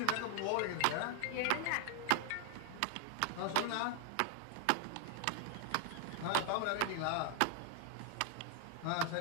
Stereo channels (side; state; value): both; different; correlation 0.00